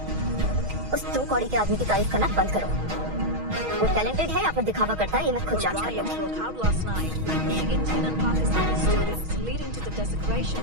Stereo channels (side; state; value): left; late; 6.3 ms